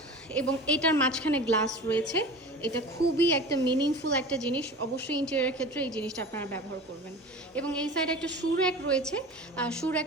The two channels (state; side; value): normal; both; correlation 0.36